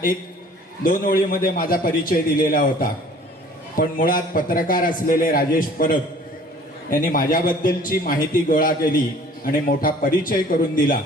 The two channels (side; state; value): both; normal; correlation 0.51